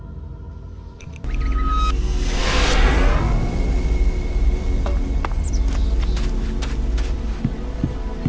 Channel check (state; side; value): identical; both; correlation 1.00